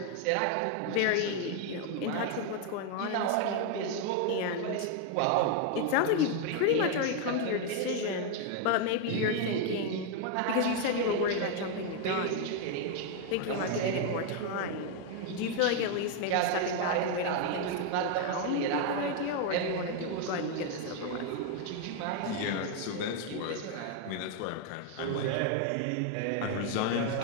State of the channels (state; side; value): different; both; correlation 0.01